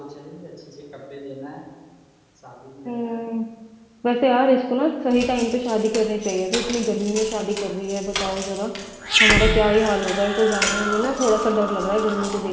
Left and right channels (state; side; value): identical; both; correlation 1.00